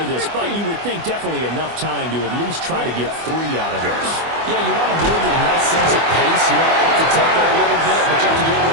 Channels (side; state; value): left; late; 24 ms